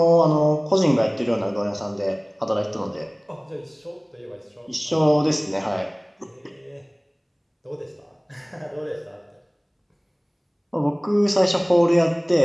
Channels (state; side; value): identical; both; correlation 1.00